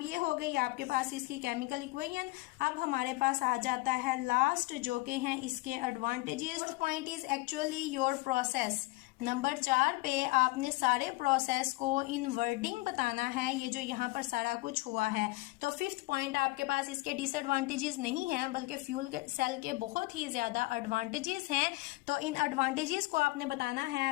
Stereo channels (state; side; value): quieter; right; 21.9 dB